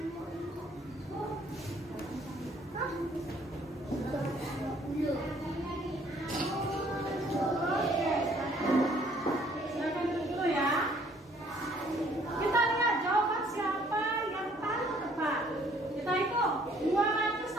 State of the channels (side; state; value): both; normal; correlation 0.61